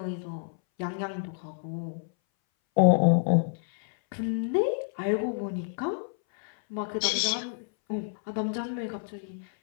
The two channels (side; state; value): right; silent; 59 dB below the other